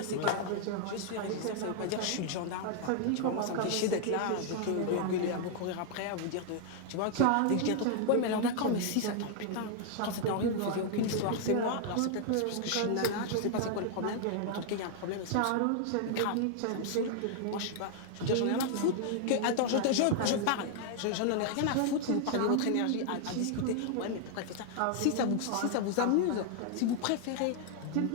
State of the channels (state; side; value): different; both; correlation 0.00